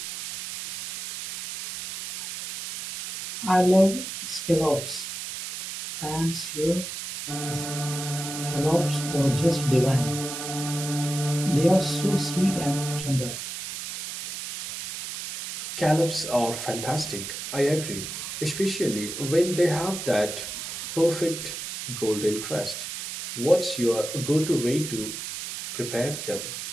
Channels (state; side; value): noise; right; hiss, 7 dB below the sound